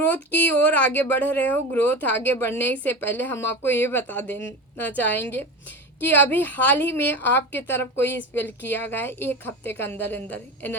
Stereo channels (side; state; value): both; normal; correlation 0.27